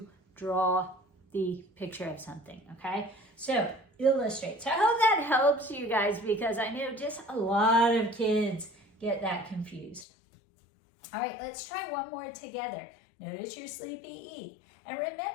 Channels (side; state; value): right; drops out; at 10.1 s